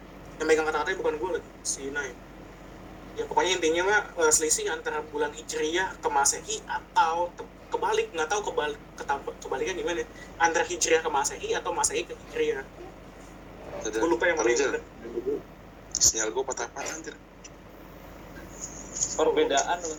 Yang megang kata-katanya bukan gue lagi, si Nai. Ya pokoknya intinya mah selisih antara bulan Hijriah ke Masehi atau kebalik, nggak tahu kebalikan gimana, antara Hijriah ke Masehi atau Masehi ke Hijriah. Gue lupa yang mana yang bener. Sinyal gue patah-patah anjir. Perbedaan. Bukan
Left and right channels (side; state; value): both; identical; correlation 1.00